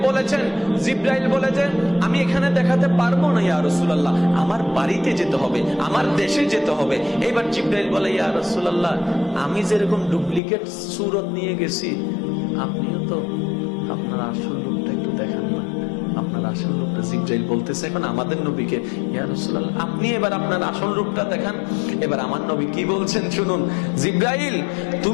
বলেছেন, জিব্রাইল বলেছেন, আমি এখানে দেখাতে পারবো না ইয়া রাসূলুল্লাহ, আমার বাড়িতে যেতে হবে, আমার দেশে যেতে হবে। এবার জিব্রাইল বলে, ইয়া রাসূলুল্লাহ, আমি যেরকম ডুপ্লিকেট সুরত নিয়ে গেছি, আপনিও তো আপনার আসল রূপটা একটু দেখান না, আপনার আসল রূপটা। জিব্রাইল বলতেছে এখন আমাদের নবীকে, ইয়া রাসূলুল্লাহ, আপনি এবার আপনার আসল রূপটা দেখান। এবার আমার নবী কি বলছেন শুনুন, জিব্রাইল,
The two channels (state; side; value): drops out; right; at 10.4 s